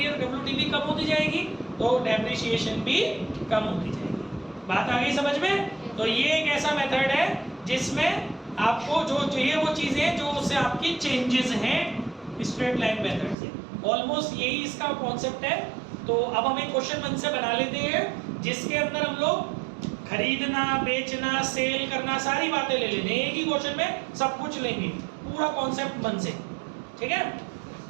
WDV कम होती जाएगी, तो डेप्रिसिएशन भी कम होती जाएगी। बात आ गई समझ में? तो ये एक ऐसा मेथड है जिसमें आपको जो चाहिए वो चीजें जो उससे आपकी चेंजेस हैं स्ट्रेट लाइन मेथड से। ऑलमोस्ट यही इसका कॉन्सेप्ट है। तो अब हम एक क्वेश्चन मन से बना लेते हैं जिसके अंदर हम लोग खरीदना, बेचना, सेल करना, सारी बातें ले लेंगे। एक ही क्वेश्चन में सब कुछ लेंगे, पूरा कॉन्सेप्ट मन से, ठीक है?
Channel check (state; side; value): drops out; left; at 13.4 s